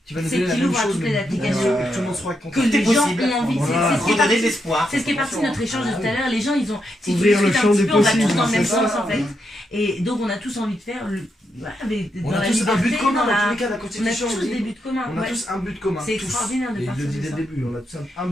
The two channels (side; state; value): both; normal; correlation 0.82